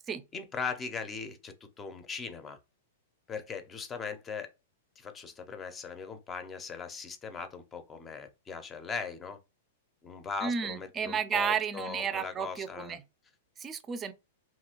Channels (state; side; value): normal; both; correlation 0.57